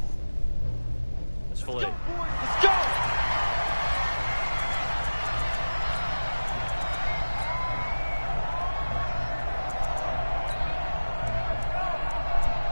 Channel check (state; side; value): inverted; both; correlation -1.00